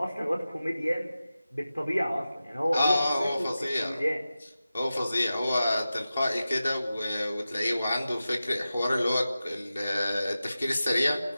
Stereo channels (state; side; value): inverted; both; correlation -0.93